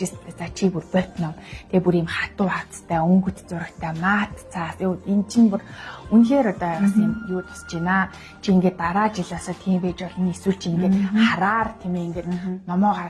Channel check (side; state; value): both; identical; correlation 1.00